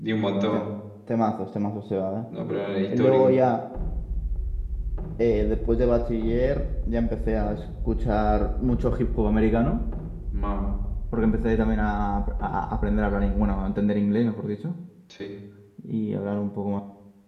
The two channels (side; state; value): both; identical; correlation 1.00